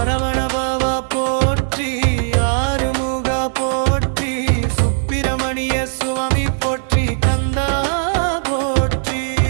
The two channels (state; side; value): silent; left; digital silence